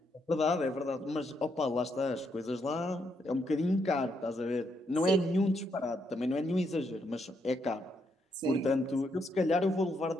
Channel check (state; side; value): normal; both; correlation 0.77